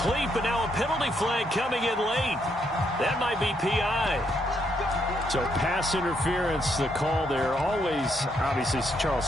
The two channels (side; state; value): both; normal; correlation 0.75